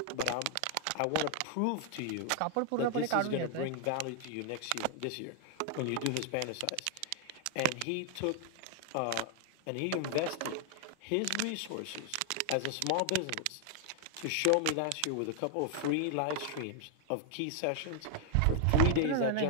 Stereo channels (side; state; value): both; different; correlation 0.00